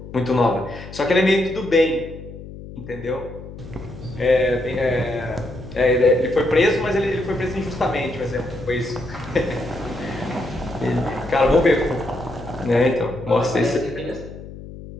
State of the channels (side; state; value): left; noise; hum, 14 dB below the sound